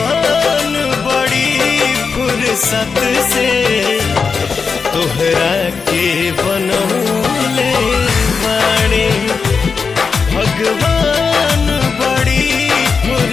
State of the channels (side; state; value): right; quieter; 5.3 dB